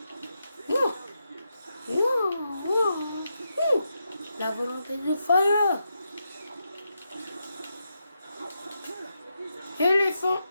Oh. Oh. Oh. La volonté du fire. Éléphant.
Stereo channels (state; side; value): inverted; both; correlation -0.85